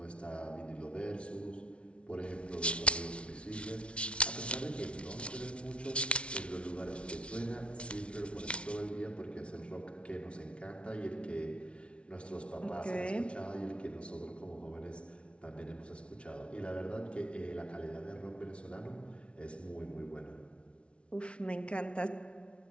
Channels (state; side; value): late; right; 0.060 ms